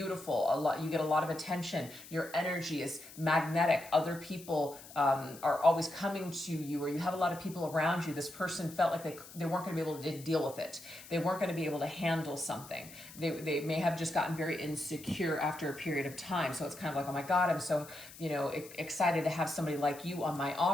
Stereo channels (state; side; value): noise; left; hiss, 17 dB below the sound